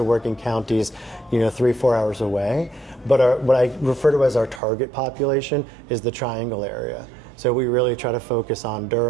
work in counties, 3-4 hours away. But what I refer to as our target population is the triangle area. So we really try to focus on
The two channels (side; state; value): left; drops out; at 4.6 s